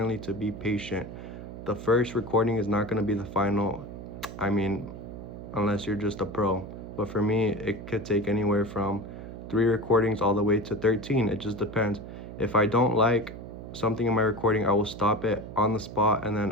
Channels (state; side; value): noise; right; hum, 11 dB below the sound